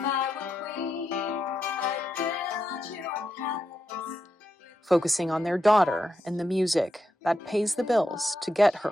I were queen, I'd build you a palace. Focusing on their daughter and the music that pays the bills to get her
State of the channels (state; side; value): normal; both; correlation 0.85